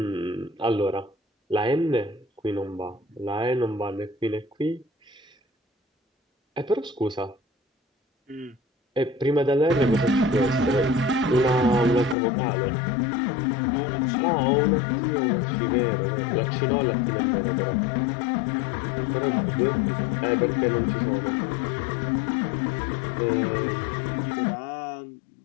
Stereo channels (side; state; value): right; drops out; at 12.2 s